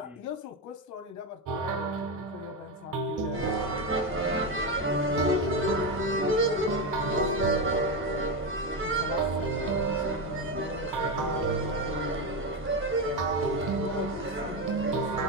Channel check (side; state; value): both; normal; correlation 0.12